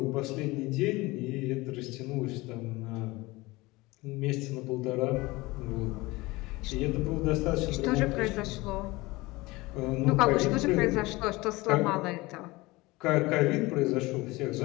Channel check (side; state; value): right; quieter; 21.5 dB